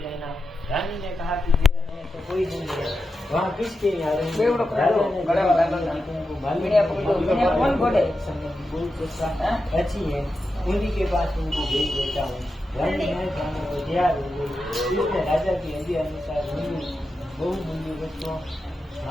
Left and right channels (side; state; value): both; normal; correlation 0.89